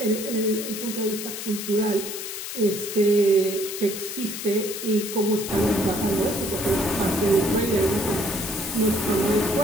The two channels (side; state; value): left; noise; hiss, 7 dB below the sound